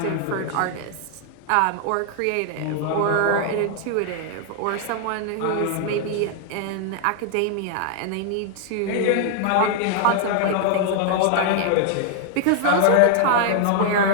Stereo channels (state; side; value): different; both; correlation 0.00